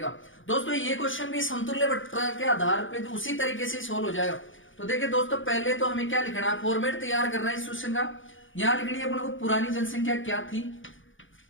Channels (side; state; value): right; late; 0.57 ms